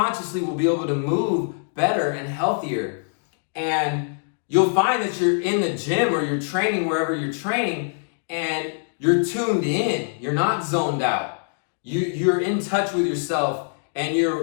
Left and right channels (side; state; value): right; silent; digital silence